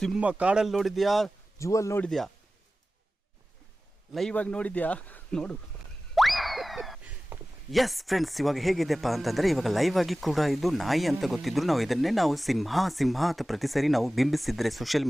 ಸಿಂಹ ಕಾಡಲ್ಲಿ ನೋಡಿದ್ಯಾ, ಜೂವಲ್ಲಿ ನೋಡಿದ್ಯಾ, ಲೈವ್ ಆಗಿ ನೋಡಿದ್ಯಾ? ನೋಡು. ಎಸ್ ಫ್ರೆಂಡ್ಸ್, ಇವಾಗ ಹೇಗಿದೆಪ್ಪ ಅಂತಂದರೆ, ಇವಾಗ ಲೈವ್ ಆಗಿ ಕೂಡ ಇದು ನಾಯಿ ಅಂತ ಗೊತ್ತಿದ್ರು ನಾವು ಇದನ್ನೇ ಸಿಂಹ ಅಂತ ಪ್ರತಿ ಸರಿ ನಾವು ಬಿಂಬಿಸಿದ್ರೆ ಸೋಷಿಯಲ್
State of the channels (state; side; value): normal; both; correlation 0.96